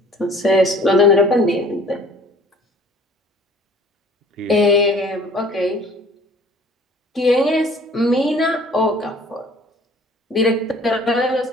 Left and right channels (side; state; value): both; normal; correlation 0.52